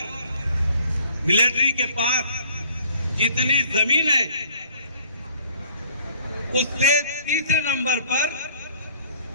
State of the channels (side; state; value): both; inverted; correlation -0.56